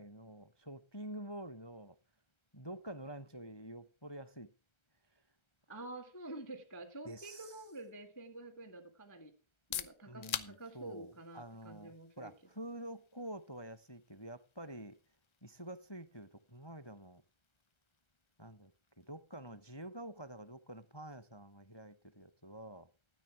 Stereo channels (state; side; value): late; right; 1.3 ms